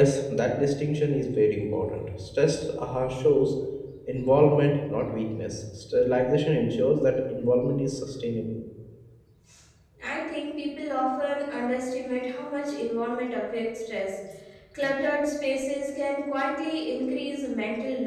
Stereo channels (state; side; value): identical; both; correlation 1.00